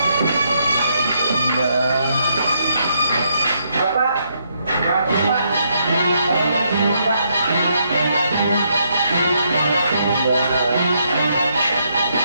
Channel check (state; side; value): inverted; both; correlation -0.75